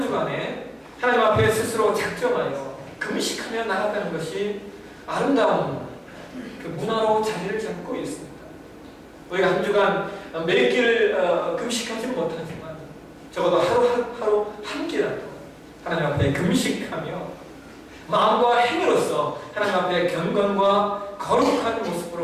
하나님 앞에 스스로 작정하여 금식하며 나아가는 것이 아름다운 그 문화로 자리를 잡고 있습니다. 우리가 한 주간 몇 끼를 금식하지는 못하지만 적어도 하루 한 끼라도 하나님 앞에 금식하며 마음과 행위로서 하나님 앞에 경건과 거룩한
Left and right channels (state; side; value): identical; both; correlation 1.00